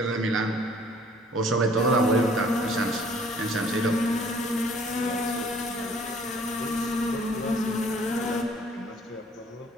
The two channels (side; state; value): both; normal; correlation 0.57